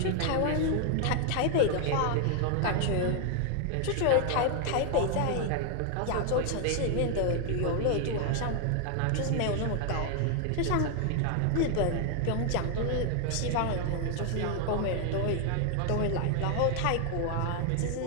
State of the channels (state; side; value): different; both; correlation 0.00